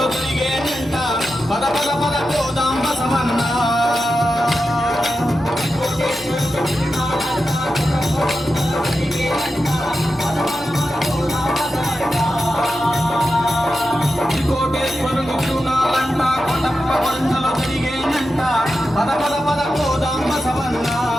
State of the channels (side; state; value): both; normal; correlation 0.90